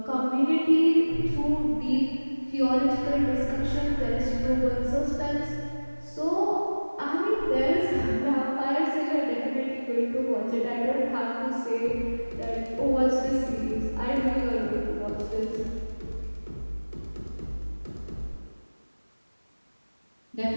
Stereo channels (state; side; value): inverted; both; correlation -1.00